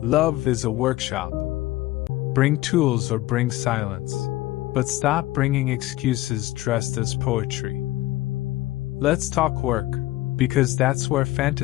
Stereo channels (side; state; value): right; quieter; 17.3 dB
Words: Love is a workshop. Bring tools or bring silence, but stop bringing excuses dressed as poetry. Let's talk work, because that's where